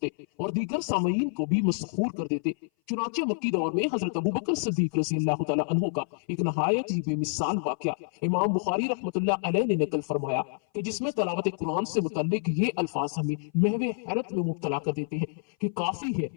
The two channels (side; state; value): right; silent; 57 dB below the other